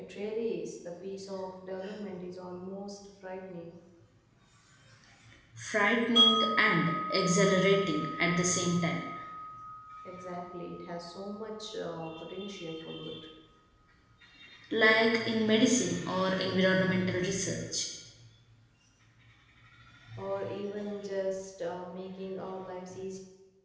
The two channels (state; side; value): identical; both; correlation 1.00